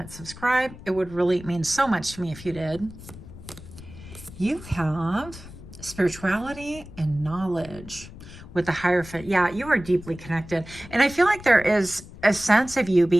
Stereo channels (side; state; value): left; noise; rumble, 16 dB below the sound